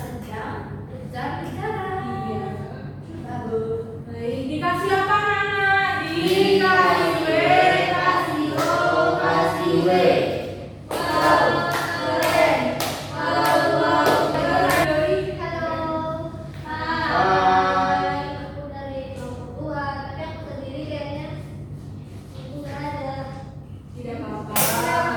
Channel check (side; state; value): both; identical; correlation 1.00